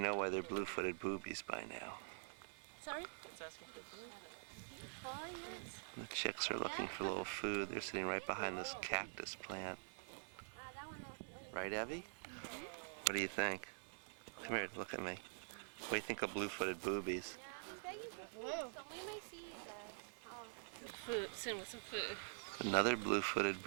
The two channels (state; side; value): silent; left; digital silence